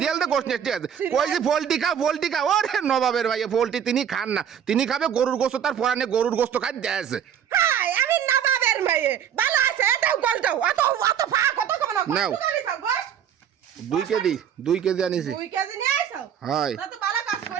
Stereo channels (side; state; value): left; quieter; 8.9 dB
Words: কই যে পোল্ট্রি খা ওরে নবাবের ভাই পোল্ট্রি তিনি খান না তিনি খাবে গরুর গোশত তার পরানে গরুর গোশত খাই দেয়ছে হাই আমি নবাবের মেয়ে ভালো আছে এটাও গলটাও অত ফা কত কম না নাও 2 কেজি আনিছি 2 কেজি নিয়ে আইছো হয় তা তো ভালো কাজ